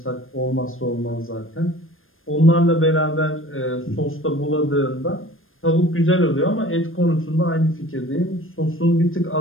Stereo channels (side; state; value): right; late; 0.59 ms